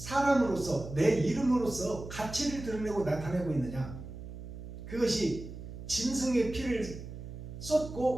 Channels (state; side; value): noise; right; hum, 11 dB below the sound